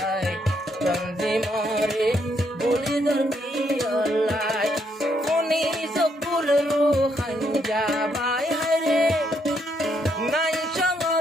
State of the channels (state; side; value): normal; both; correlation 0.75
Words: তঞ্জি মরে বলি দরকিয়ালাই কোনি সকুল রুহান যাবাই হায়রে নাই